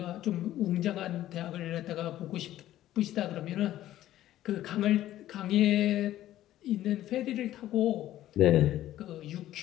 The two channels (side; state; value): right; quieter; 13.5 dB